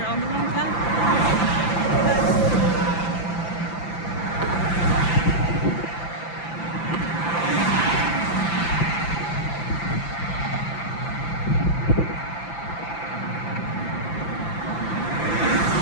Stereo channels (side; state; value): right; late; 5.9 ms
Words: on the wrong path.